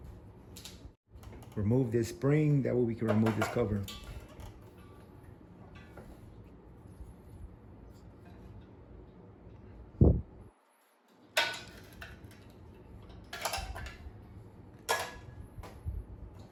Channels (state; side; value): identical; both; correlation 1.00